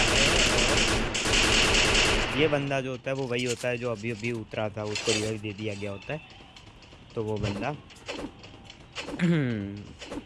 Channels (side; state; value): both; identical; correlation 1.00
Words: है। ये बंदा जो होता है वो वही होता है जो अभी अभी उतरा था, उसको रिवाइव दे दिया गया होता है। तो वो बंदा